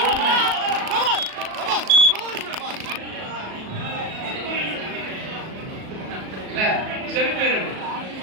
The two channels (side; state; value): left; late; 37 ms